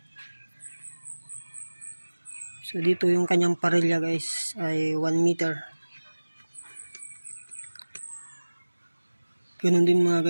So dito yung kanyang parilya guys ay 1 meter. Ganun din mga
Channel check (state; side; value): inverted; both; correlation -1.00